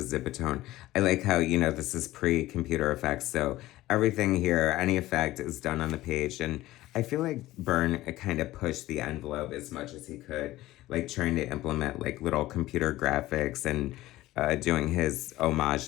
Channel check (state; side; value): quieter; right; 16.6 dB